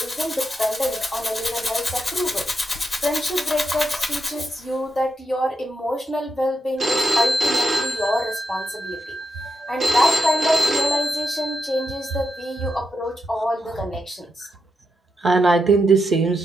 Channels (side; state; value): both; normal; correlation 0.85